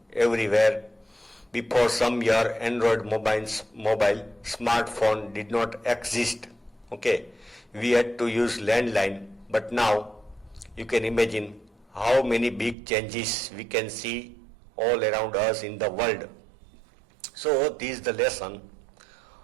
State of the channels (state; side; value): drops out; left; at 12.8 s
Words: everywhere. Before some year, Android mobile smartphone did not exist. We had to use landline, but now you can imagine how many big changes we can see all around us in the world. So this is the lesson